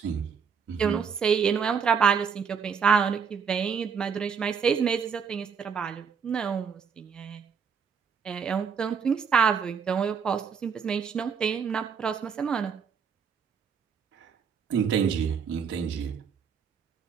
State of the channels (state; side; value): quieter; left; 6.5 dB